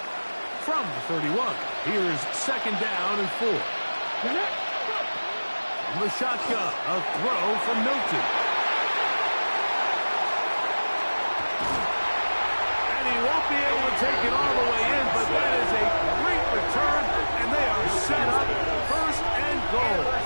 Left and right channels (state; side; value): inverted; both; correlation -1.00